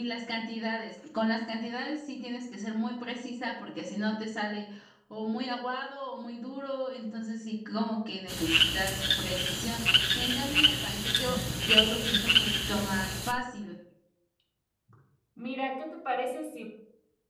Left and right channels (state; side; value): identical; both; correlation 1.00